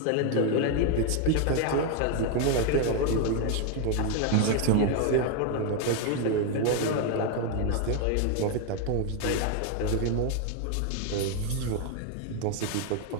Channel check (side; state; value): both; different; correlation 0.01